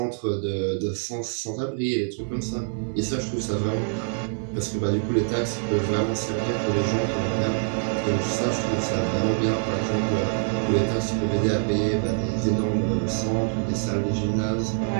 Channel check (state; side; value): silent; left; digital silence